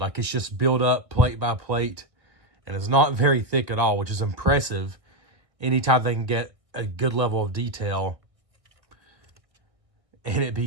it's just built up plate by plate. And it's not very thick at all, which is impressive. Anytime they can get a good level of detail and it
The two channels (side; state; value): left; late; 1.5 ms